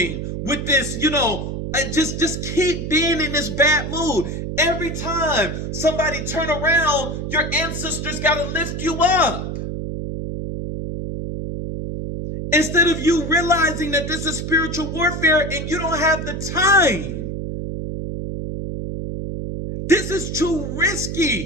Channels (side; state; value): right; noise; hum, 5 dB below the sound